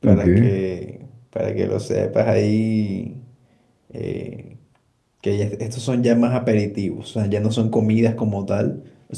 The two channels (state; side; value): identical; both; correlation 1.00